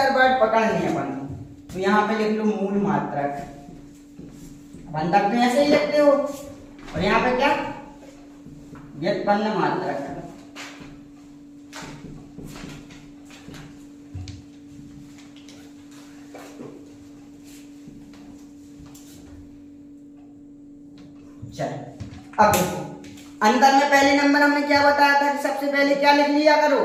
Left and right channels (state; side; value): identical; both; correlation 1.00